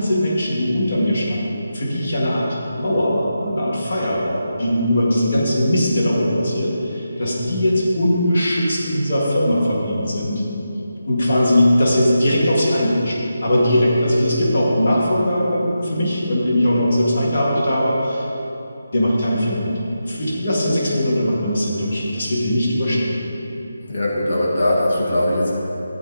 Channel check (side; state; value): both; inverted; correlation -0.88